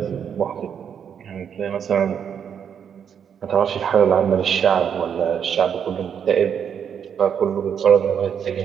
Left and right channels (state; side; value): quieter; left; 7.9 dB